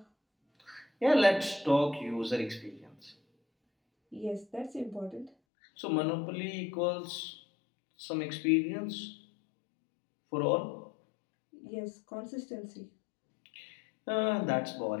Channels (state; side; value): drops out; right; at 5.3 s